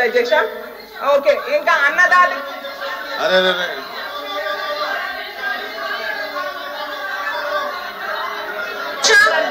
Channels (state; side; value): identical; both; correlation 1.00